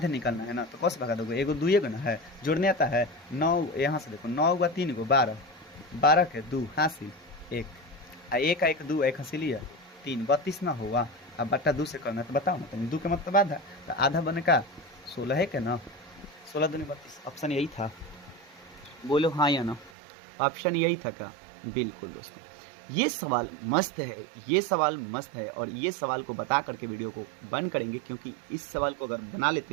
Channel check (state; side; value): drops out; left; at 19.9 s